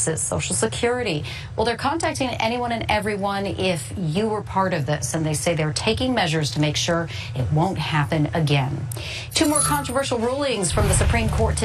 Social Security. Well, they're contacting anyone and everyone if you were part of this, and they say they're taking measures to make sure it won't happen again. Two more controversial rulings from the Supreme Court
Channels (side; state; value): both; identical; correlation 1.00